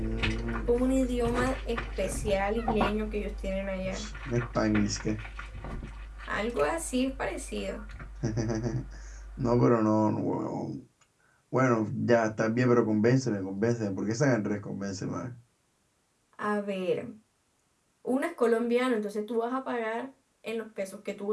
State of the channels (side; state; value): both; identical; correlation 1.00